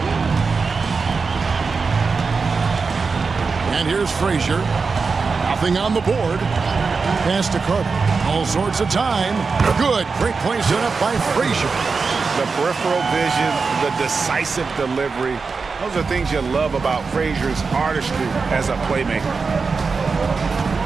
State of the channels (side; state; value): left; quieter; 4.7 dB